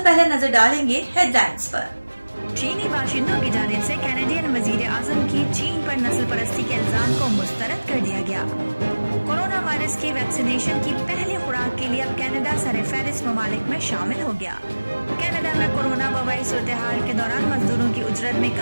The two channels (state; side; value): inverted; both; correlation -1.00